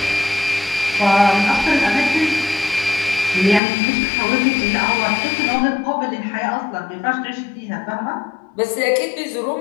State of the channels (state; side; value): drops out; right; at 3.6 s